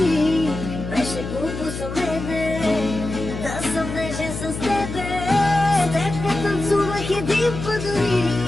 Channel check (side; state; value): left; noise; hum, 7 dB below the sound